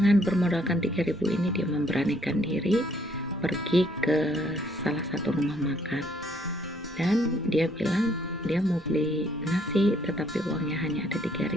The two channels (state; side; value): normal; both; correlation 0.67